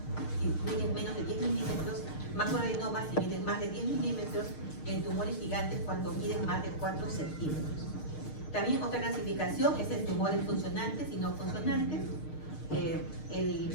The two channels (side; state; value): right; late; 6.5 ms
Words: si miden menos de 10 milímetros, macroadenomas si miden más de 10 milímetros, y en tumores gigantes cuando miden más de 4 centímetros. También otra clasificación es en tumores funcionantes y no funcionantes. El